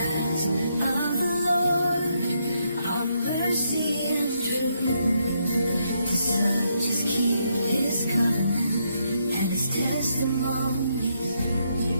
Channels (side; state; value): both; inverted; correlation -0.77